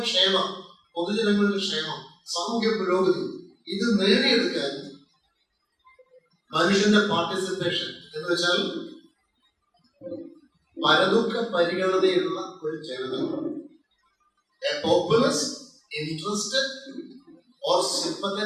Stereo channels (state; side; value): identical; both; correlation 1.00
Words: ക്ഷേമം, പൊതുജനങ്ങളുടെ ക്ഷേമം, സാമൂഹ്യ പുരോഗതി. ഇത് നേടിയെടുക്കാൻ മനുഷ്യന്റെ പാർട്ടിസിപ്പേഷൻ എന്ന് വെച്ചാൽ പരദുഃഖ പരിഗണനയുള്ള ഒരു ജനത, a populace interested or